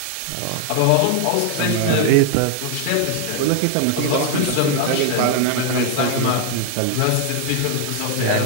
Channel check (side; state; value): both; different; correlation 0.00